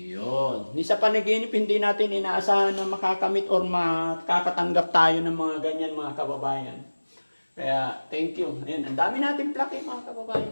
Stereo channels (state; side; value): inverted; both; correlation -1.00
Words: Ni sa panaginip, hindi natin inaasahan na makakamit or makakatanggap tayo ng mga ganyan mga kababayan. Kaya, thank you. Ayun, ang dami natin plaki mga